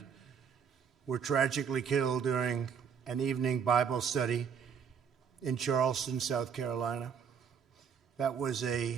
were tragically killed during an evening Bible study in Charleston, South Carolina. That was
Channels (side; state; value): left; quieter; 7.1 dB